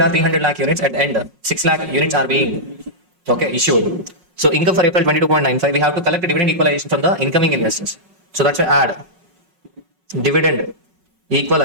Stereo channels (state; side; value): late; left; 5.5 ms